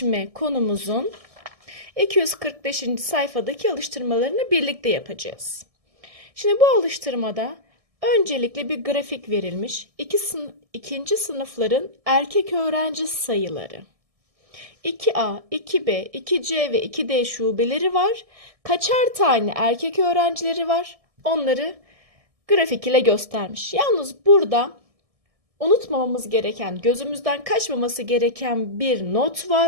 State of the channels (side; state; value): left; late; 1.7 ms